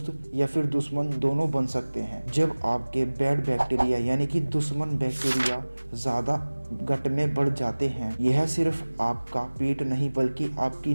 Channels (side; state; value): both; inverted; correlation -1.00